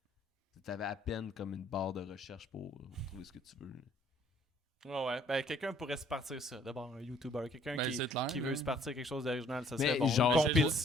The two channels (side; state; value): both; normal; correlation 0.61